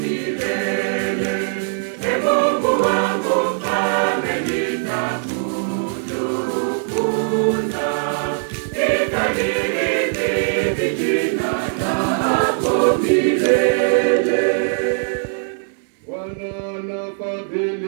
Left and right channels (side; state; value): left; silent; digital silence